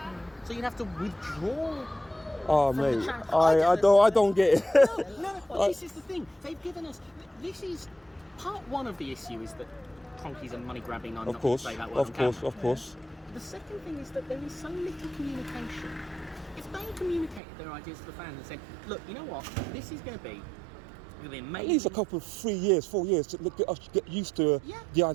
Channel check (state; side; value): drops out; left; at 17.4 s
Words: so you'd have to withdraw. Oh mate, I don't get it. No, well, this is the thing. They've given us. This is part one of the issue is that Cronkies are money grabbing. I'm not going to say that word. Of course. The second thing is that there is so little communication. If they communicated their ideas to the fans and said, look, you know what, this is going to be amazing. At least a couple of 3 years, 4 years to get used to the